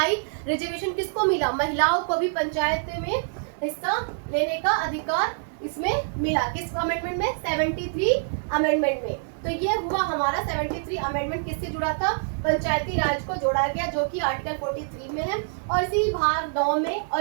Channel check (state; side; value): silent; left; 61 dB below the other